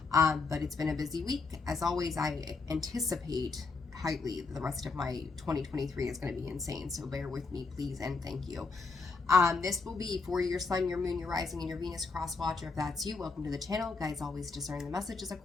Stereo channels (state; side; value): quieter; right; 4.2 dB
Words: But it's been a busy week. As always, I anticipate highly the rest of my 2023 is going to be insane, so bear with me, please, and thank you. This will be for your sun, your moon, your rising, and your Venus cross watcher. If that's you, welcome to the channel. Guys, always discern the messages